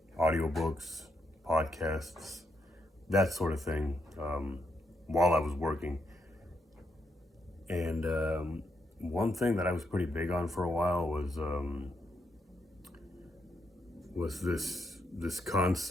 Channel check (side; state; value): both; normal; correlation 0.79